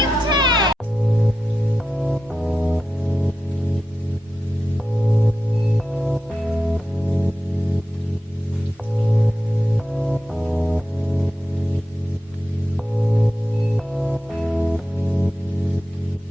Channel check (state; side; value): normal; both; correlation 0.90